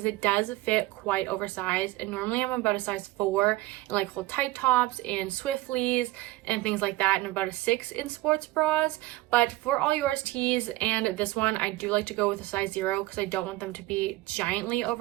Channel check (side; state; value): left; quieter; 18.5 dB